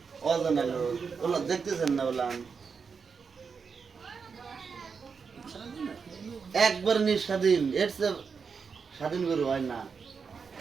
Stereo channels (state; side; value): quieter; left; 5.7 dB